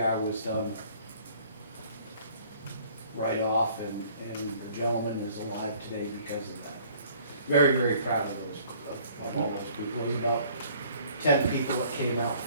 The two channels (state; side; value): inverted; both; correlation -0.56